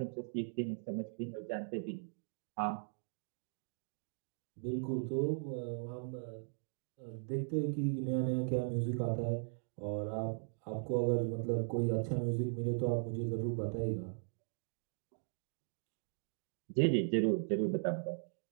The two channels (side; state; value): left; silent; digital silence